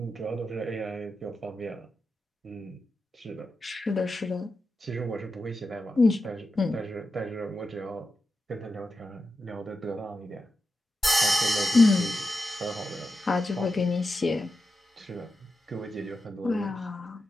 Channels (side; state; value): both; normal; correlation 0.89